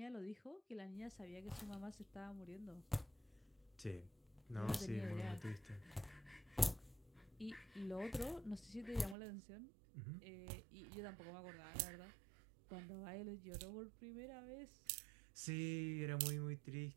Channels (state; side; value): drops out; left; at 9.2 s